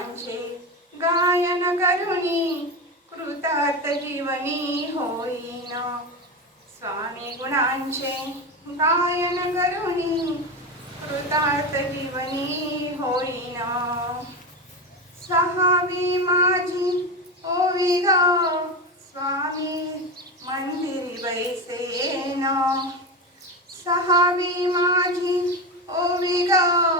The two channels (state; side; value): normal; both; correlation 0.18